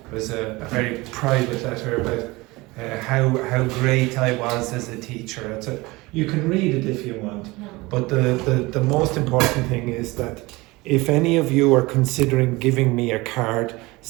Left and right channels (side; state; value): left; quieter; 22.2 dB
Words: was a very private letter about how great I was as a teacher. You can read it if you want, but the most important thing is that if any of you are considering giving me a card